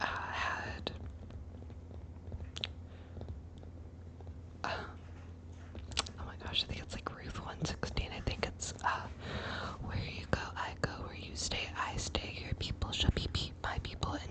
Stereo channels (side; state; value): both; identical; correlation 1.00